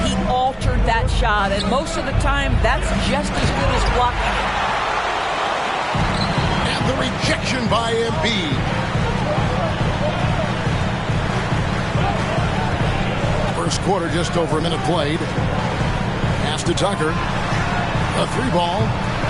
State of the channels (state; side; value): identical; both; correlation 1.00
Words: He altered that shot, and most of the time, that's just as good as blocking it. And the rejection by Embiid. First quarter, just over a minute played. Pass to Tucker. A three ball.